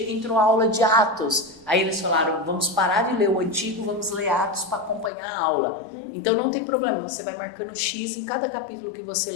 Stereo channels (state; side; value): drops out; right; at 5.1 s